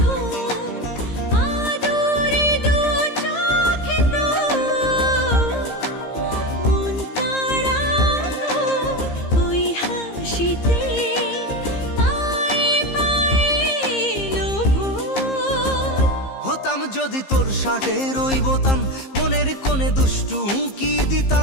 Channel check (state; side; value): late; right; 15 ms